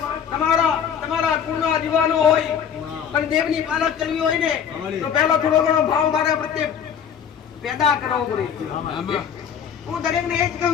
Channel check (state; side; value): quieter; right; 8.0 dB